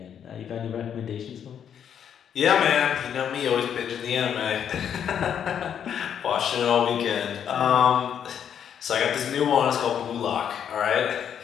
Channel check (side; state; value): right; quieter; 8.6 dB